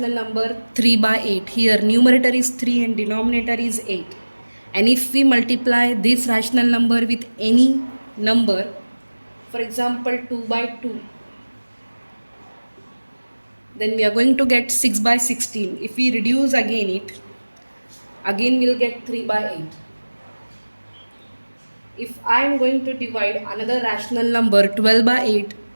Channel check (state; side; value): inverted; both; correlation -1.00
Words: number 3 by 8, here numerator is 3 and denominator is 8. And if we multiply this rational number with any number, for example 2 by 2, then we are going to get 6 by 16. If we reduce again it, again we'll get 3 by 8. If I am going to divide another rational number 12 by 8